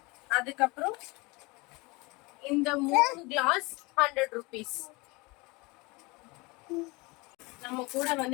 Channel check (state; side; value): quieter; right; 25.2 dB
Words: அதுக்கப்புறம் இந்த 3 கிளாஸ் 100 rupees. நம்ம கூட